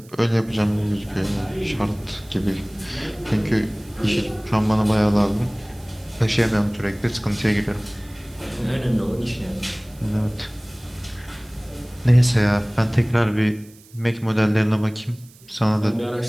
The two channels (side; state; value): right; noise; hiss, 25 dB below the sound